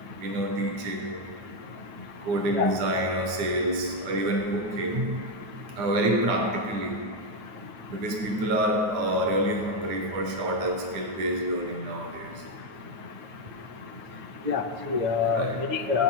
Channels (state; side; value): late; left; 9.3 ms